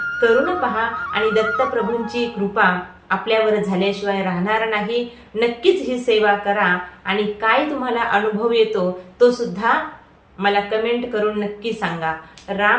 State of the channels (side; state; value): both; identical; correlation 1.00